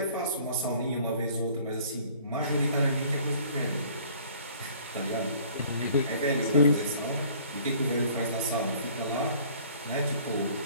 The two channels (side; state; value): both; inverted; correlation -0.53